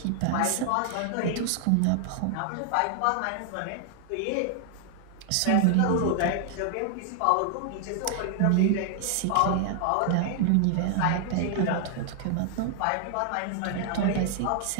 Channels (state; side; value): different; both; correlation 0.00